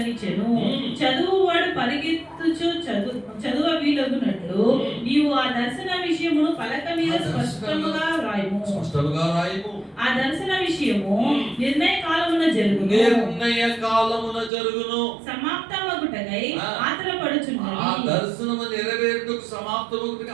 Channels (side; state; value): left; drops out; at 14.5 s